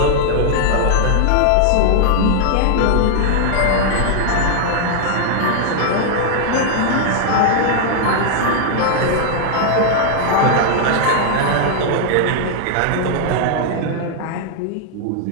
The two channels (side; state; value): both; different; correlation 0.00